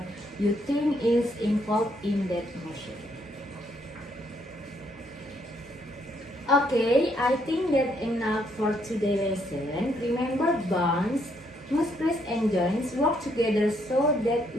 you think is involved in that motion. Okay, I think that's enough for today's lesson. Remember, bones, muscles, and joints work together so that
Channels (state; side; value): normal; both; correlation 0.72